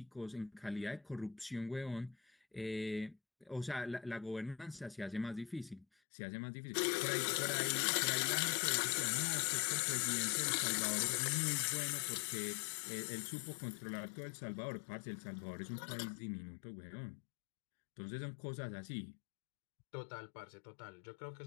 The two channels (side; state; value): right; drops out; at 5.9 s